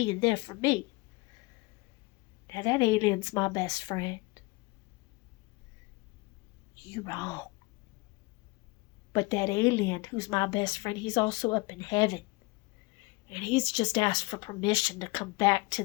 there for me. Now that alien's my best friend. You wrong. But that alien who's my best friend, he's also up in heaven. And he's just asked for permission to come back to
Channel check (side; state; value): right; quieter; 24.4 dB